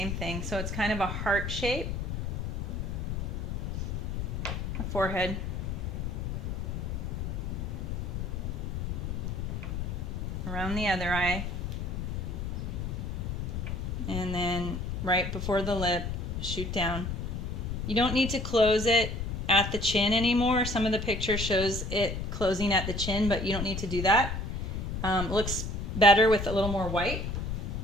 thing. So it's kind of a heart shape. A forehead. Around the other eye. And then right before the lip, shoot down. You don't need to close it at the chin anymore. Some of the picture shows it closing at the chin, but you don't need to do that. Looks better with a little more white.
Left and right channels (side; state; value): left; noise; rumble, 3 dB below the sound